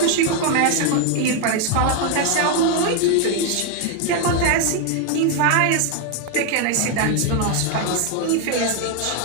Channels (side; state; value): both; different; correlation 0.01